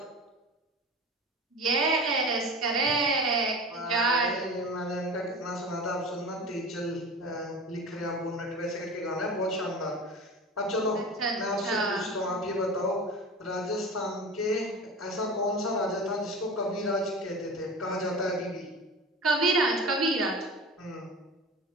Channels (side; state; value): both; normal; correlation 0.33